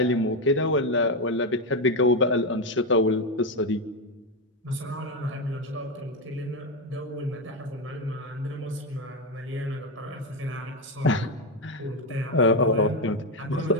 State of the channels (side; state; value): both; normal; correlation 0.08